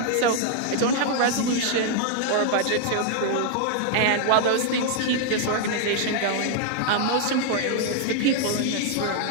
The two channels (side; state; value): both; different; correlation 0.00